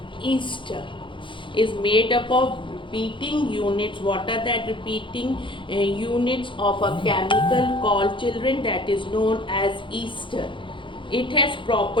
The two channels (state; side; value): late; right; 0.24 ms